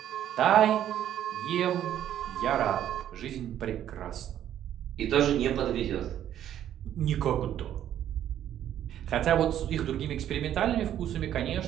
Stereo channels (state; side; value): quieter; left; 10.9 dB